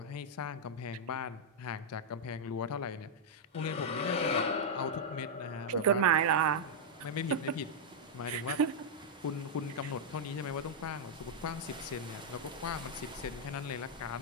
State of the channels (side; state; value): both; normal; correlation -0.05